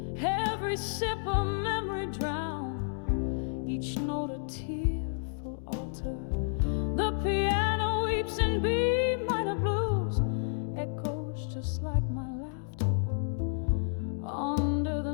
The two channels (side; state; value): right; silent; digital silence